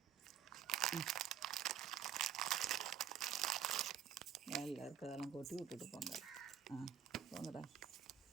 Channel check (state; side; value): quieter; left; 9.1 dB